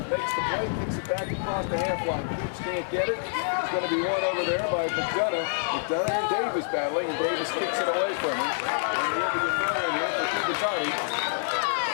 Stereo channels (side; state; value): right; silent; digital silence